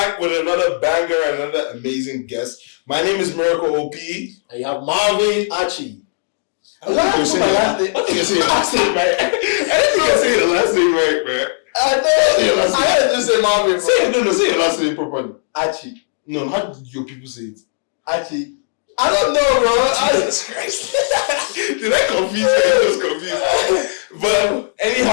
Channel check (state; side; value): silent; right; digital silence